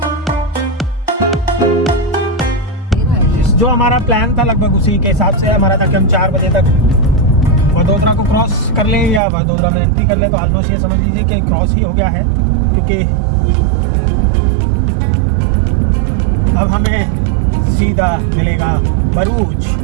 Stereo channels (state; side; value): drops out; left; at 9.2 s